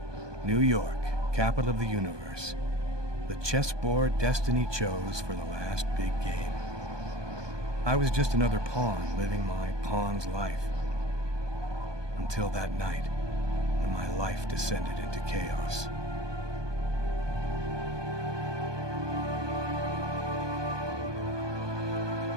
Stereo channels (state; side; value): late; left; 1.2 ms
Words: New York, capital of the universe. The chessboard destiny chose for the last big game. I was just another pawn living my pawn's life. Until that night, when my life descended into chaos.